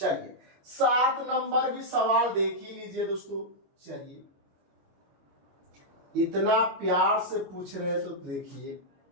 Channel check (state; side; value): late; left; 22 ms